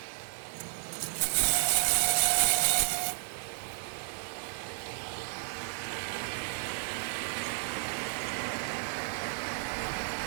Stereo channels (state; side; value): silent; left; 56 dB below the other